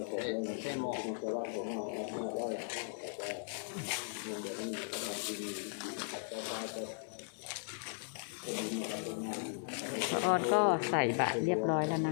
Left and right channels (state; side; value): silent; right; 53 dB below the other